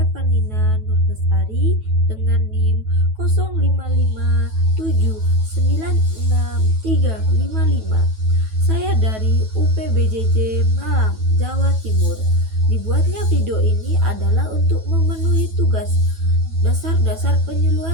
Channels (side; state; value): left; late; 9.2 ms